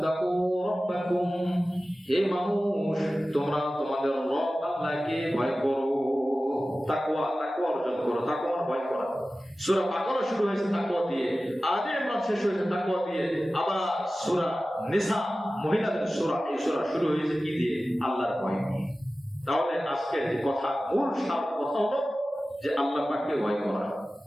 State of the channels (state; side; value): normal; both; correlation 0.95